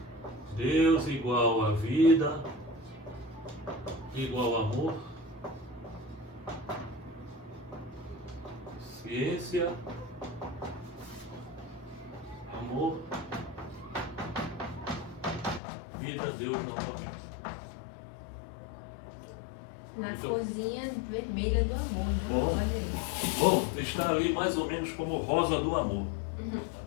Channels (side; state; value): right; drops out; at 15.6 s